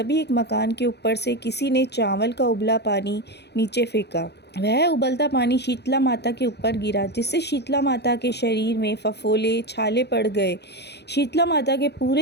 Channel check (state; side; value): late; right; 0.49 ms